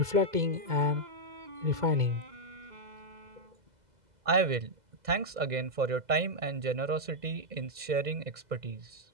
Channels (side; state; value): left; late; 2.0 ms